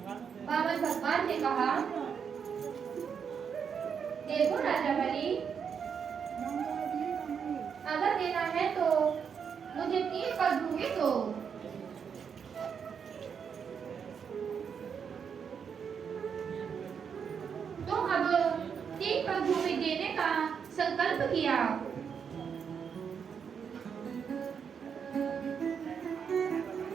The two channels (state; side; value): quieter; left; 6.9 dB